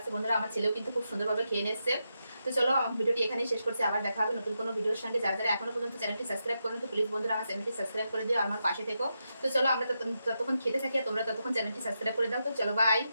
বন্ধুরা, আমার ছেলেও কিন্তু খুব সুন্দরভাবে খেয়ে নিচ্ছে। তো চলো ভিডিওটি এখানেই শেষ করছি, আবার দেখা হবে নতুন কোনো ভিডিওর সঙ্গে। যারা যারা এখনো পর্যন্ত চ্যানেলটি সাবস্ক্রাইব করেন তো প্লিজ বন্ধুরা আমার চ্যানেলটি সাবস্ক্রাইব করে দিও, আমার পাশে থেকো। তো চলো আমরা ততক্ষণ খেতে থাকি আর তোমরা ততক্ষণ চ্যানেলটি সাবস্ক্রাইব করে দাও। তো চলো বাই।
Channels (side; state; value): both; inverted; correlation -0.85